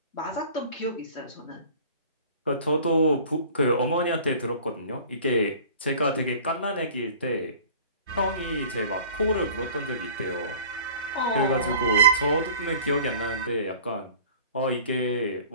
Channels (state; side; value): inverted; both; correlation -0.45